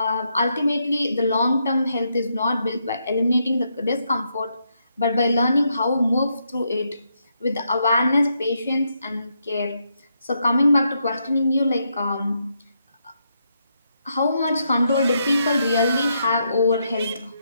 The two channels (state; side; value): inverted; both; correlation -0.79